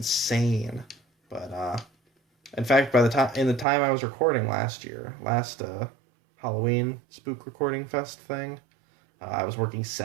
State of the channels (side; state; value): left; drops out; at 3.7 s